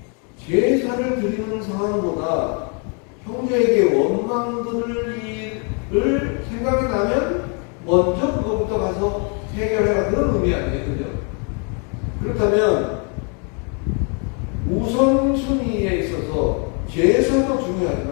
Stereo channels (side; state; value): right; quieter; 37.6 dB